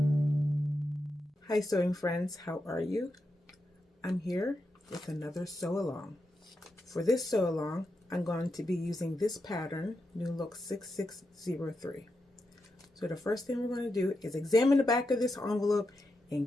Hi sewing friends, how are you? I'm here with another sew along. For this sew along, I'm going to be using this pattern, New Look 6603. So the first thing we're going to do is examine the back of this envelope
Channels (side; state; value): both; normal; correlation 0.87